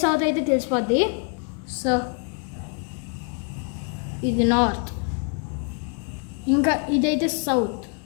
అయితే తెలిసిపోద్ది. సో ఇది నార్త్, ఇంకా ఇదైతే సౌత్.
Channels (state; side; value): quieter; right; 38.9 dB